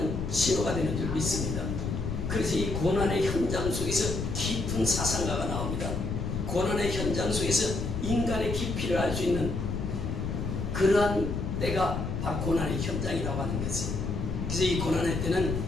신호가 되는 줄 믿습니다. 그래서 이 고난의 현장 속에서 깊은 사상가가 나옵니다. 고난의 현장 속에서 인간의 깊이를 알 수 있는 그러한 때가 바로 고난의 현장이라고 하는 것이에요. 그래서 이 고난의 때는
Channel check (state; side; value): noise; left; rumble, 2 dB below the sound